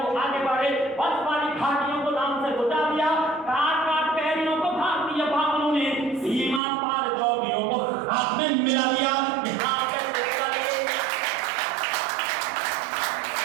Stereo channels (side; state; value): left; drops out; at 6.6 s